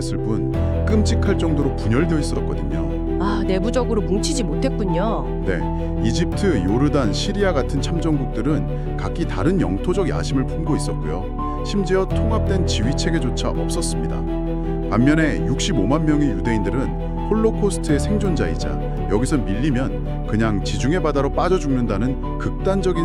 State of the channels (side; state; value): both; identical; correlation 1.00